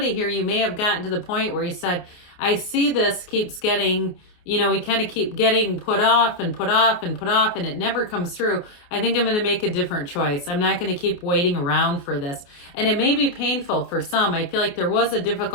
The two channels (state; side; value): late; right; 28 ms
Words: here, you may have gotten to the point where you said, I see this keeps getting, we kind of keep getting put off and put off and put off, and it never comes through. I think I'm going to make a different choice. I'm not going to keep waiting around for this. And it may be painful for some. I feel like there was a